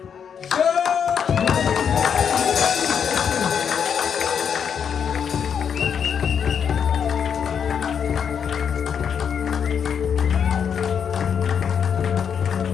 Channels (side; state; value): right; quieter; 7.5 dB